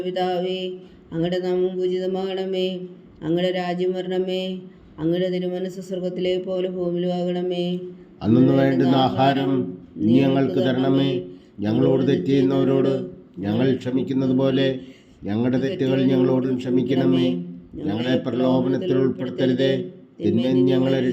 പിതാവേ, അങ്ങയുടെ നാമം പൂജിതമാകണമേ. അങ്ങയുടെ രാജ്യം വരണമേ. അങ്ങയുടെ തിരുമനസ്സ് സ്വർഗത്തിലെ പോലെ ഭൂമിയിലും ആകണമേ. അന്നു വേണ്ടുന്ന ആഹാരം നീ ഞങ്ങൾക്ക് തരണമേ. ഞങ്ങളോട് തെറ്റ് ചെയ്യുന്നവരോട് ഞങ്ങൾ ക്ഷമിക്കുന്നത് പോലെ ഞങ്ങളുടെ തെറ്റുകൾ ഞങ്ങളോടും ക്ഷമിക്കണമേ. ഞങ്ങളെ പ്രലോഭനത്തിൽ ഉൾപ്പെടുത്തരുതേ, തിന്മയിൽ ഞങ്ങളെ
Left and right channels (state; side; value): identical; both; correlation 1.00